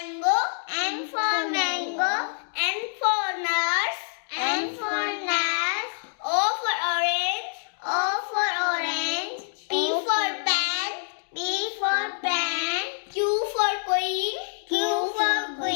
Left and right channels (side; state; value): right; silent; digital silence